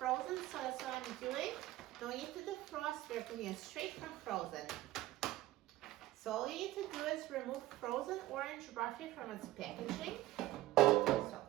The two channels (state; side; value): quieter; left; 16.1 dB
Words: so that's what I'm doing. No need to defrost, we're cooking it straight from frozen. So all you need to do is remove frozen orange roughy from its packaging. So